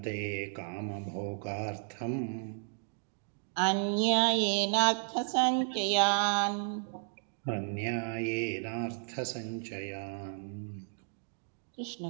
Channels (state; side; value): silent; left; digital silence